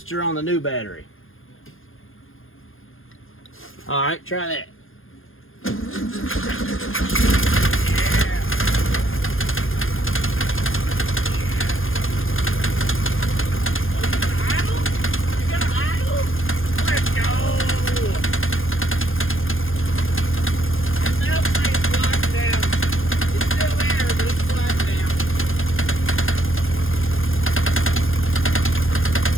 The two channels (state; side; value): late; right; 0.59 ms